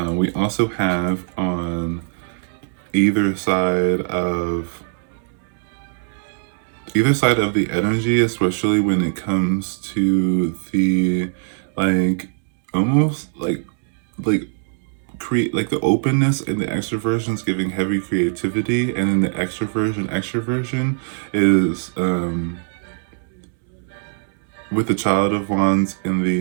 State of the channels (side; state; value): left; silent; 65 dB below the other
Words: we also have on either side of the energy, especially when it comes to the like almost like create like the openness and the extroversion is giving heavy creativity, and then the extroversion is with the Child of Wands and